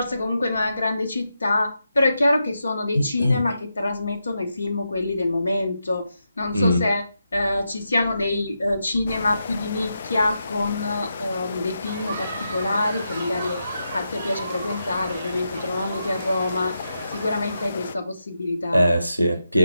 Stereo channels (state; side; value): inverted; both; correlation -0.86